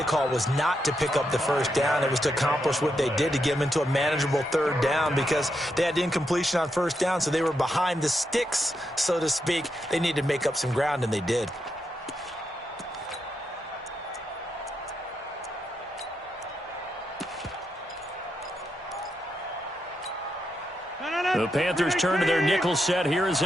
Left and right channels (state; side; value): normal; both; correlation 0.83